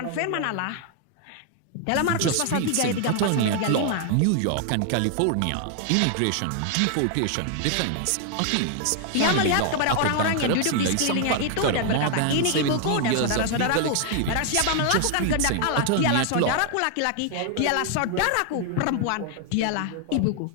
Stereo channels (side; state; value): both; different; correlation 0.00